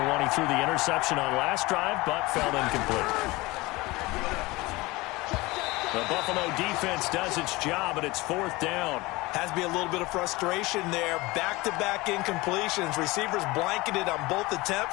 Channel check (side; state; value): right; quieter; 21.9 dB